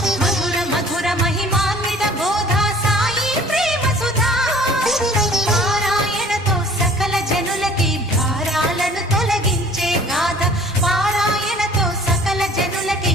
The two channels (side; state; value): both; normal; correlation 0.50